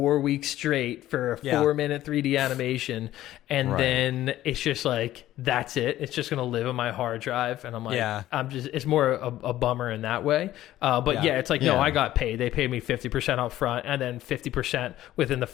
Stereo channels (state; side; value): quieter; right; 14.1 dB